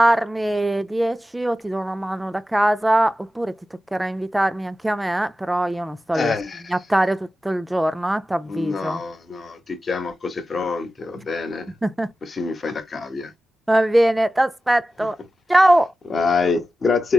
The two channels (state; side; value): normal; both; correlation 0.93